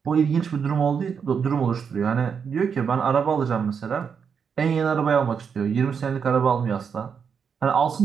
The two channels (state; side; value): quieter; left; 6.6 dB